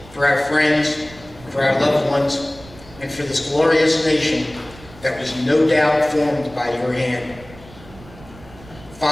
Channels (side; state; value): right; noise; rumble, 21 dB below the sound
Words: for our friends, for our loved ones, and for this glorious nation that was no doubt formed by your hand.